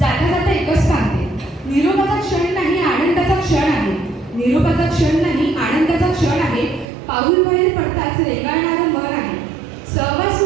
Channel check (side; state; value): left; drops out; at 6.9 s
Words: जाता एकच सांगते, निरोपाचा क्षण नाही आनंदाचा क्षण आहे. निरोपाचा क्षण नाही आनंदाचा क्षण आहे. पाऊल बाहेर पडताच रेंगाळणारं मन आहे. सहवास